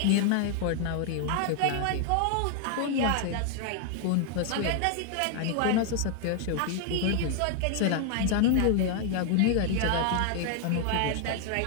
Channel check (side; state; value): both; different; correlation 0.00